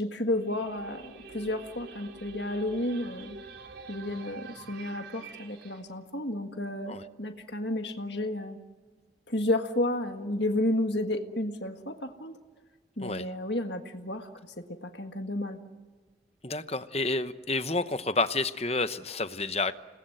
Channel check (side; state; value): both; normal; correlation 0.35